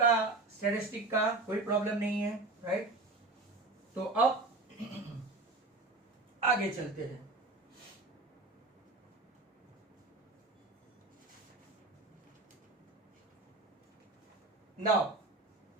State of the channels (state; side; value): quieter; left; 3.1 dB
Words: statistic का, कोई problem नहीं है, right. तो अब आगे चलते हैं। Now